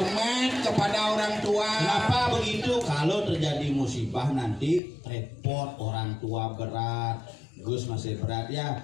kepada orang tua. Kenapa begitu? Kalau terjadi musibah nanti repot, orang tua berat, Gus masih berat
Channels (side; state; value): right; drops out; at 4.8 s